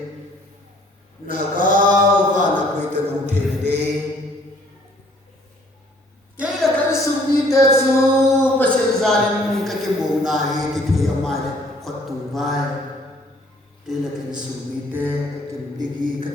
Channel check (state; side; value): normal; both; correlation 0.59